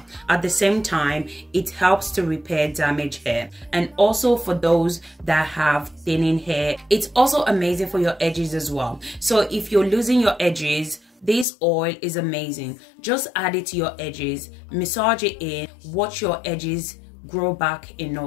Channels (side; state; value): right; drops out; at 11.5 s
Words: At the same time, it helps to repair damaged hair, and also for those that have thinning hair. It's also amazing for your edges as well. So if you're losing your edges, this oil is amazing. Just add it to your edges, massage it in, watch your edges grow back in